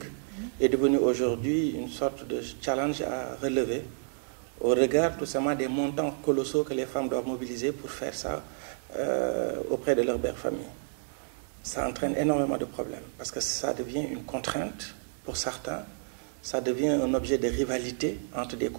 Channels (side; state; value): left; silent; digital silence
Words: est devenu aujourd'hui une sorte de challenge à relever au regard tout simplement des montants colossaux que les femmes doivent mobiliser pour faire ça auprès de leur belle famille. Ça entraîne énormément de problèmes parce que ça devient une contrainte pour certains, ça devient un objet de rivalité entre des